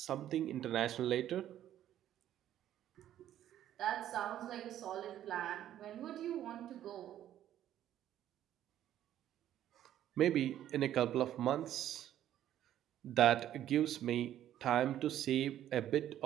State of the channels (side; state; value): left; quieter; 11.7 dB